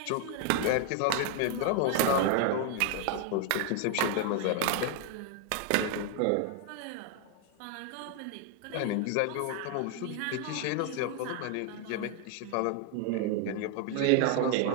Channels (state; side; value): different; both; correlation 0.01